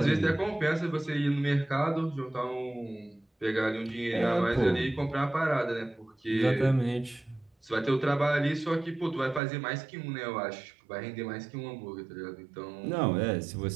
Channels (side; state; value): left; drops out; at 9.4 s